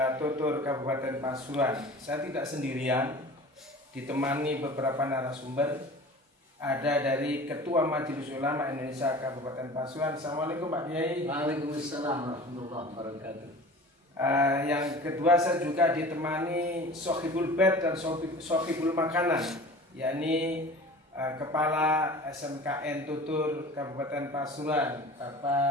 Kabupaten Pasuruan. Saya tidak sendirian, ditemani beberapa narasumber. Ada dari Ketua Majelis Ulama Indonesia Kabupaten Pasuruan. Assalamualaikum Pak Kiai. Waalaikumsalam warahmatullahi wabarakatuh. Yang kedua, saya juga ditemani Sohibul Bed dan Sohibul Makanan, yakni Kepala SMKN Tutur Kabupaten Pasuruan,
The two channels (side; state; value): both; normal; correlation 0.40